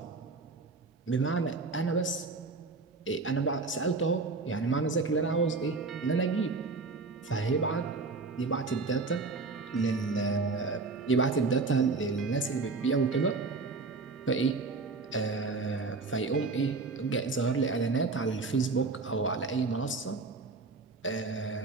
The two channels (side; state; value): left; quieter; 4.0 dB